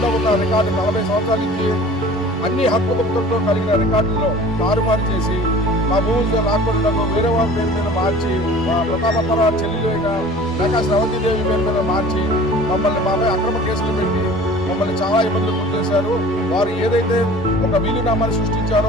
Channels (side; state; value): both; normal; correlation 0.44